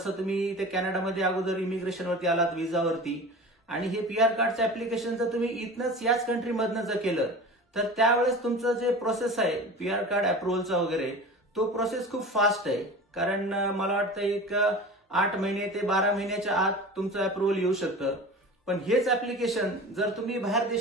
तुम्ही ते कॅनडामध्ये अगोदर इमिग्रेशनवरती आलात विजावरती, आणि हे PR कार्डचं ऍप्लिकेशन जर तुम्ही इथनंच याच कंट्रीमधनं जर केलं तर त्यावेळेस तुमचं जे प्रोसेस आहे PR कार्ड अप्रुव्हलचा वगैरे, तो प्रोसेस खूप फास्ट आहे. कारण मला वाटतं एक 8 महिने ते 12 महिन्याच्या आत तुमचं अप्रुव्हल येऊ शकतं. पण हेच ऍप्लिकेशन जर तुम्ही बाहेर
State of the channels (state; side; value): normal; both; correlation 0.35